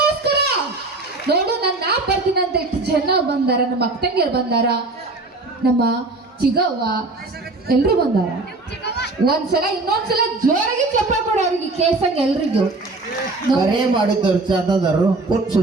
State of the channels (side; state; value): left; quieter; 3.3 dB